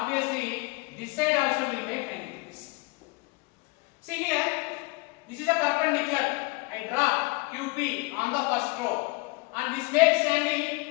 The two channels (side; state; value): right; quieter; 26.1 dB